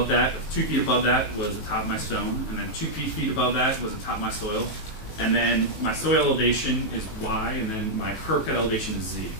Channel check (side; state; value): right; late; 19 ms